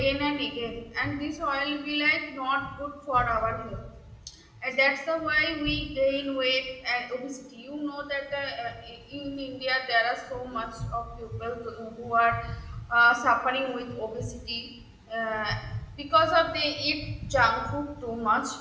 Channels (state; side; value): identical; both; correlation 1.00